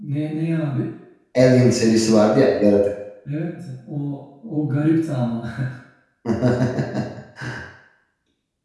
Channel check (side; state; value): both; identical; correlation 1.00